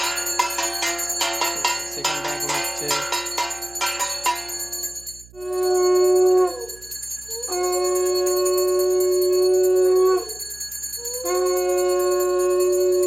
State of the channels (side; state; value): right; noise; hum, 24 dB below the sound